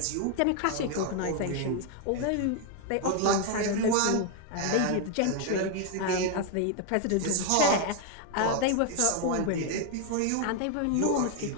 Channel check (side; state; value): both; different; correlation 0.00